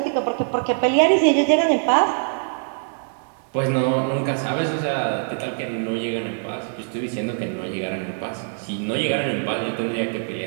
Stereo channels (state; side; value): silent; left; digital silence